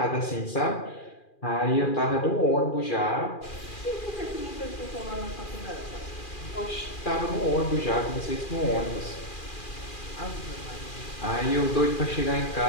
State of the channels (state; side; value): late; right; 2.4 ms